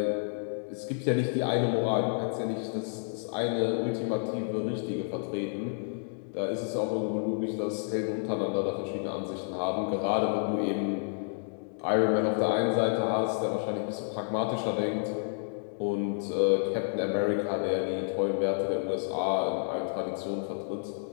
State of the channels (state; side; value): silent; right; digital silence